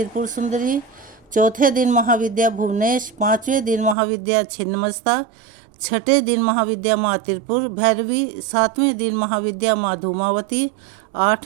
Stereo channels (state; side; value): drops out; left; at 4.0 s